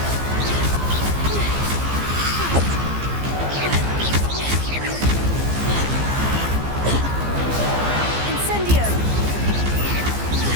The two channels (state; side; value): late; left; 15 ms